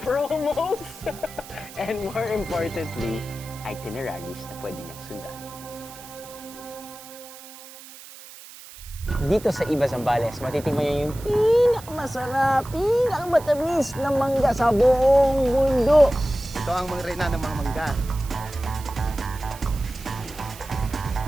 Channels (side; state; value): right; noise; hiss, 17 dB below the sound